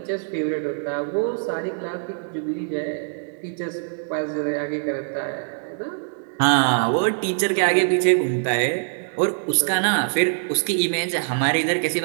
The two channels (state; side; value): silent; left; digital silence